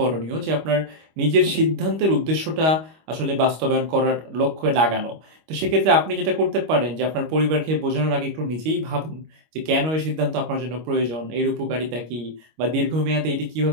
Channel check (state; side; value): late; left; 25 ms